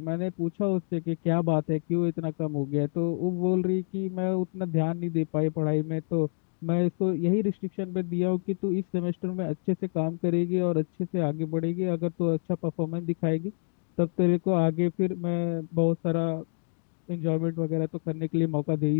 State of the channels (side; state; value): right; silent; digital silence